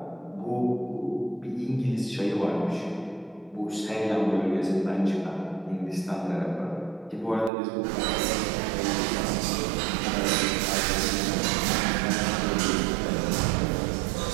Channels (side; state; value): left; drops out; at 7.5 s